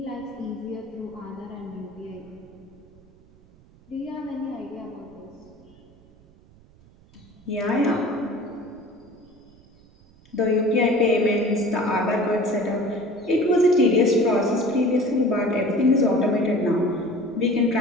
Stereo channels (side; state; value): right; noise; rumble, 27 dB below the sound